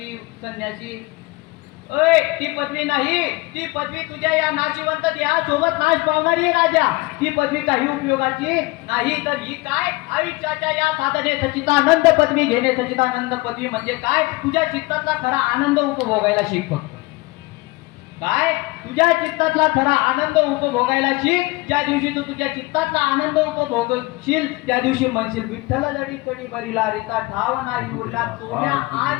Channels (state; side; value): quieter; right; 22.7 dB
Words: संन्यासी, ती पदवी नाही. ती पदवी तुझ्या या नाशिवंत देहासोबत नाश पावणारी आहे राजा. ती पदवी काही उपयोगाची नाही. तर ही काय, आयुष्याच्या या साधने सच्चिदानंद पदवी घेणे. सच्चिदानंद पदवी म्हणजे काय, तुझ्या चित्ताचा खरा आनंद उपभोगायला शिक. फक्त काय, तुझ्या चित्तातला खरा आनंद उपभोगायला शिक. ज्या दिवशी तू तुझ्या चित्तातला आनंद उपभोगशील त्या दिवशी म्हणशील विठ्ठल जडी कडी बरीला रीता ठाव नाही उरला सोन्या